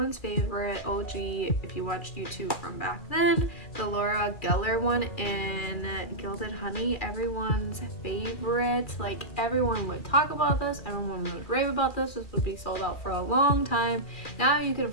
favorite OG, if you watched YouTube from back then, the Laura Geller one in Gilded Honey. Everyone's favorite. Like, everyone would talk about this, everyone would rave about this. This would be sold out for a long time. Now you can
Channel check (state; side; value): late; right; 2.4 ms